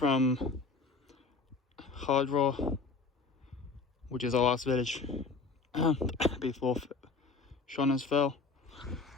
Hardraw, which is our last village before Shauna's Fell,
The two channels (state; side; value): quieter; right; 4.2 dB